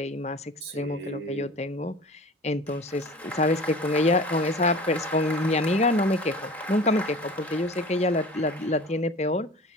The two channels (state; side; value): normal; both; correlation 0.40